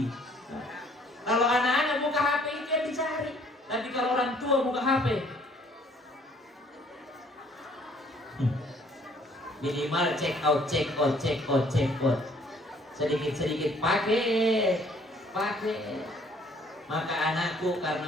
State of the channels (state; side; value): normal; both; correlation 0.60